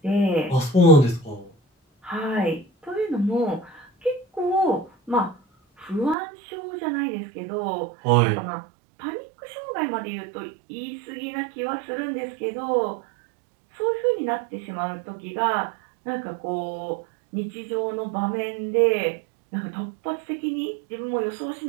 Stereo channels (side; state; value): left; drops out; at 6.2 s